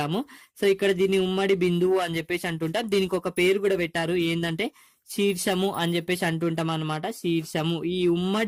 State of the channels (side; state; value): both; identical; correlation 1.00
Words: సో ఇక్కడ దీన్ని ఉమ్మడి బిందువు అని చెప్పేసి అంటుంటాం. దీనికి ఒక పేరు కూడా పెట్టారు, ఏంటంటే శీర్షము అని చెప్పేసి అంటుంటాం అనమాట. శీర్షము, ఈ